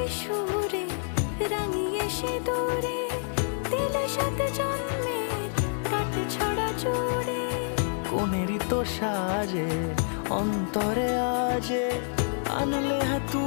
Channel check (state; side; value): silent; right; digital silence